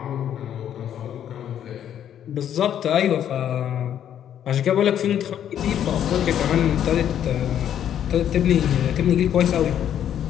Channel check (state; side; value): quieter; right; 10.0 dB